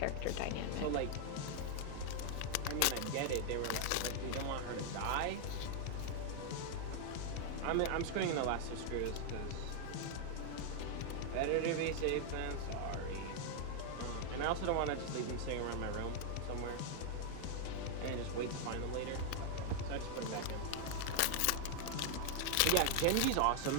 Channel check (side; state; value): both; different; correlation 0.00